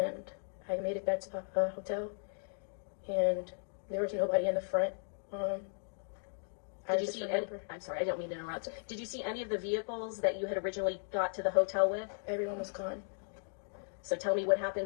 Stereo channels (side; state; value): right; silent; digital silence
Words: I made it back to the hotel, and there was nobody in the front. Did you see any, I'm sorry, I don't mean to interrupt. Did you see any of the vehicles that you had originally got to the hotel with? Everyone was gone. So tell me what